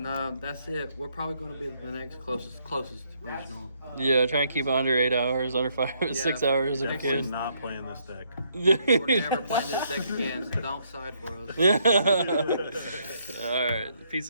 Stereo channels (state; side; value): inverted; both; correlation -0.72